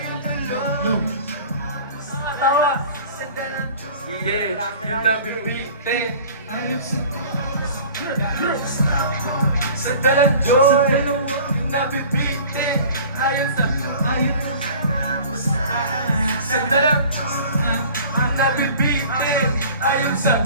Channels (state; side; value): inverted; both; correlation -0.44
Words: Tawa. Yeah, yung nabibigte. Sa dalang joy, yung nabibitin. Ayon sa sa dalang ang nabibitin. Ayon sa